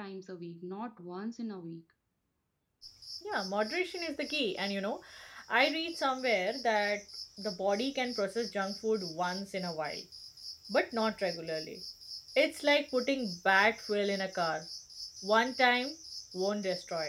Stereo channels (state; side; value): identical; both; correlation 1.00